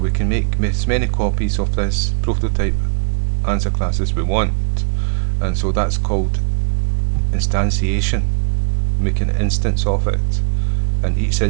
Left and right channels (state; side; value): silent; left; digital silence